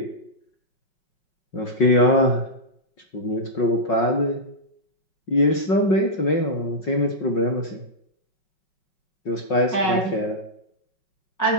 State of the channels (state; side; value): late; right; 5.4 ms